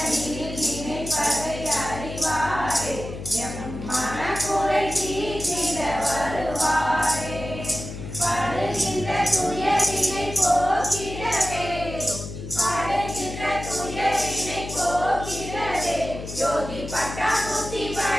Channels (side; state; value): left; noise; hum, 9 dB below the sound